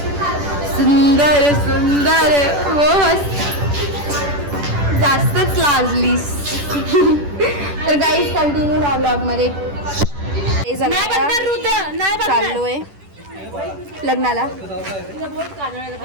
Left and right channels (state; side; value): late; left; 10 ms